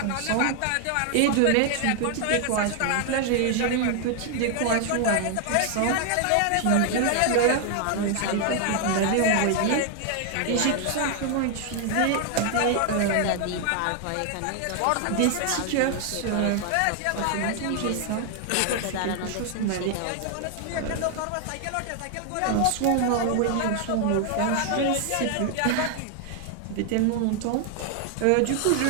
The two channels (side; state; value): both; different; correlation 0.00